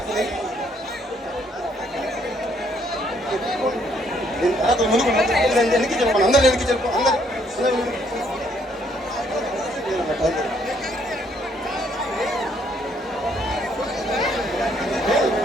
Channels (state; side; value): normal; both; correlation 0.68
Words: ముందుకు వెనక్కి చెప్పండి అందరు వెనక్కి చెప్పు అందరు